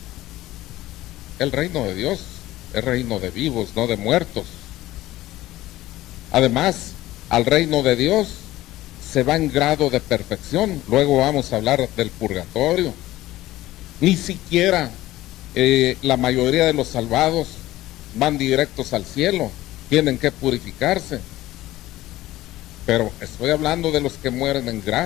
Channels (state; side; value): quieter; right; 16.2 dB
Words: el reino de Dios es reino de vivos, no de muertos. Además, al reino de Dios se va en grado de perfección. Luego vamos a hablar del purgatorio. Ni siquiera la mayoría de los salvados van directos al cielo, tienen que purificarse. Pero estoy hablando de los que mueren en